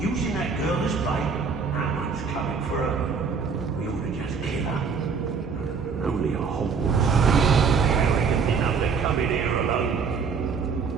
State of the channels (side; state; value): left; quieter; 5.5 dB